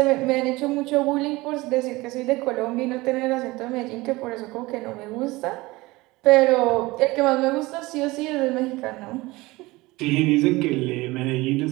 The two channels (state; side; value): quieter; left; 21.1 dB